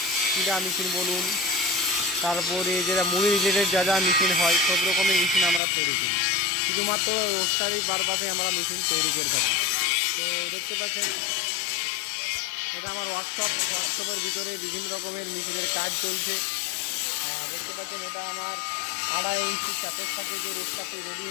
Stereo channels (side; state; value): right; drops out; at 5.6 s